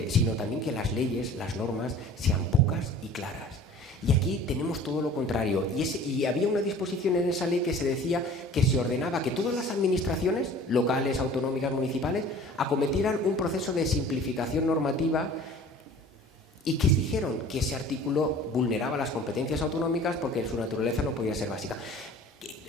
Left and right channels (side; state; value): both; normal; correlation 0.46